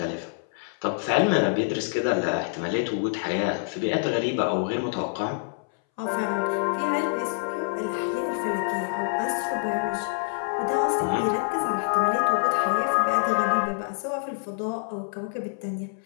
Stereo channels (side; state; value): right; silent; 61 dB below the other